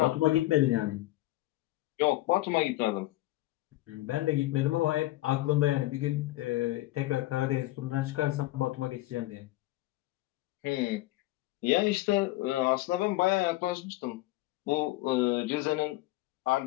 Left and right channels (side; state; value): right; quieter; 17.6 dB